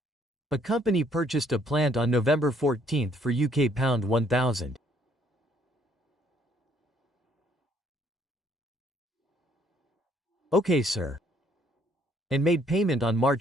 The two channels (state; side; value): normal; both; correlation 0.65